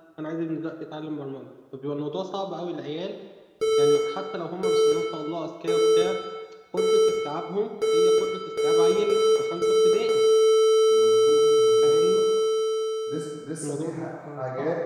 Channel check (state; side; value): identical; both; correlation 1.00